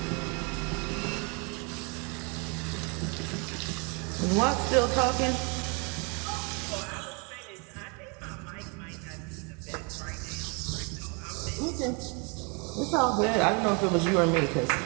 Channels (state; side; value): quieter; left; 33.2 dB